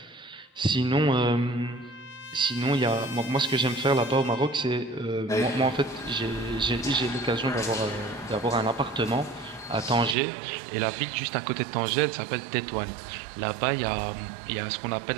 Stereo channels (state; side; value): drops out; left; at 10.2 s